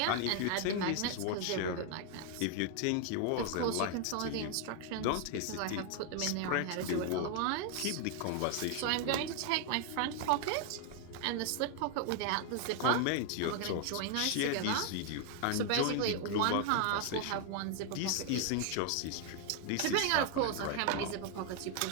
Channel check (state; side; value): different; both; correlation 0.00